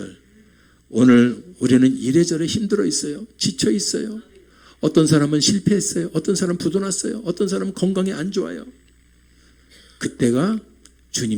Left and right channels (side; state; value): both; identical; correlation 1.00